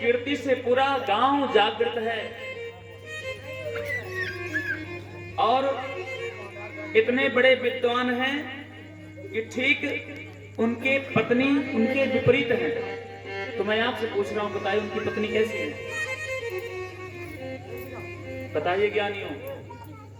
से पूरा गांव जागृत है। और इतने बड़े विद्वान हैं कि ठीक उनके पत्नी उनके विपरीत हैं। तो मैं आपसे पूछ रहा हूं, बताइए उनकी पत्नी कैसी है? बताइए ज्ञानियों,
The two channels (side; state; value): both; identical; correlation 1.00